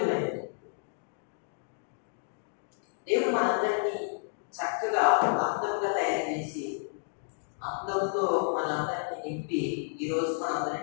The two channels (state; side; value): silent; right; digital silence